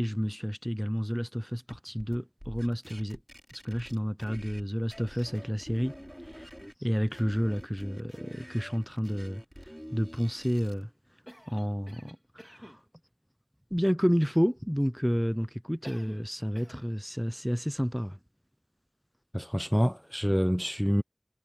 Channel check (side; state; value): both; identical; correlation 1.00